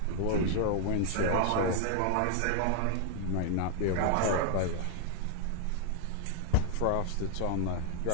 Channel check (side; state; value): both; different; correlation 0.00